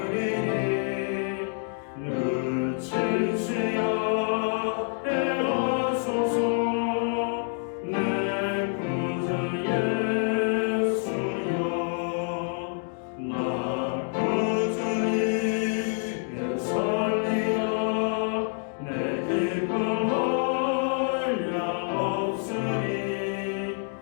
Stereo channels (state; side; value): silent; right; 56 dB below the other